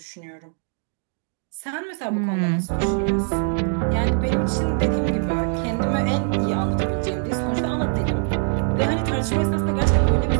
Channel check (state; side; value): silent; left; 60 dB below the other